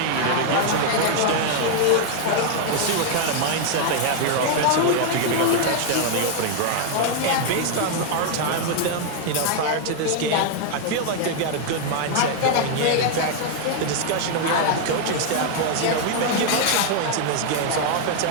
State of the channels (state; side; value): different; both; correlation 0.00